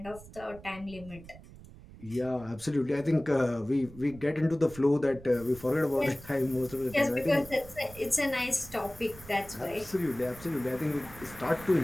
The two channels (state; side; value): noise; right; rumble, 18 dB below the sound